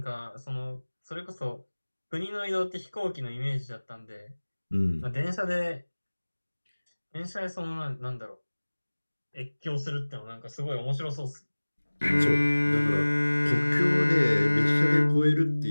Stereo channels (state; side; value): inverted; both; correlation -1.00